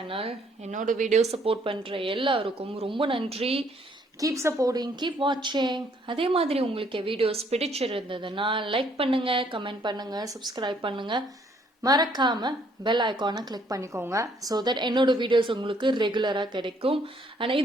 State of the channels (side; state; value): both; normal; correlation 0.65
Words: என்னோட video support பண்ணுற எல்லாருக்கும் ரொம்ப நன்றி. கீப் சப்போர்ட்டிங், கீப் வாட்சிங். அதே மாதிரி உங்களுக்கு வீடியோஸ் பிடிச்சிருந்ததுன்னா லைக் பண்ணுங்கள், கமெண்ட் பண்ணுங்கள், சப்ஸ்கிரைப் பண்ணுங்கள். மறக்காம பெல் ஐக்கானை கிளிக் பண்ணிக்கோங்க. ஸோ தட் என்னோட வீடியோஸ் உங்களுக்கு ரெகுலராக கிடைக்கும். ஆனால்